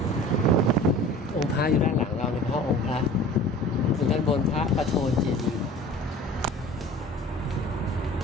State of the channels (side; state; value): both; normal; correlation 0.43